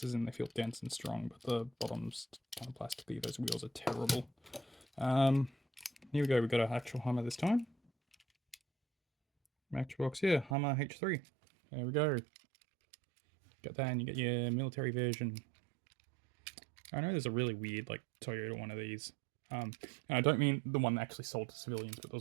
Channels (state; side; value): drops out; left; at 10.6 s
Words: as in they feel dense and strong, but the bottom's kind of plasticky. Those wheels are terrible. Here we go. We got an actual Hummer this time. Matchbox, yeah, Hummer H3. There we go. Got that, and you get your military version. I know there's a really weird, like, Toyota one of these. And I don't mean the one actually sold to civilians, but